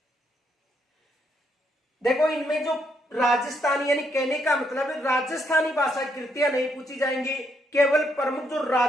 देखो, इनमें जो राजस्थानी यानी कहने का मतलब है राजस्थानी भाषा कृतियां नहीं पूछी जाएंगी, केवल प्रमुख जो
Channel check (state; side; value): normal; both; correlation 0.75